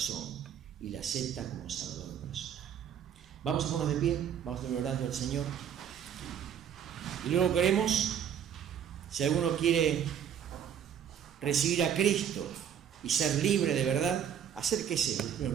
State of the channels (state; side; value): quieter; left; 8.8 dB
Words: y le acepta como Salvador personal. Vamos a ponernos de pie, vamos a terminar orando al Señor. Y luego queremos, si alguno quiere recibir a Cristo y ser libre de verdad, acérquese a los